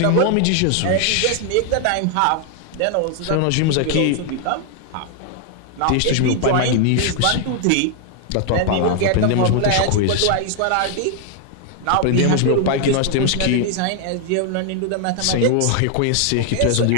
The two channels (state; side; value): different; both; correlation 0.00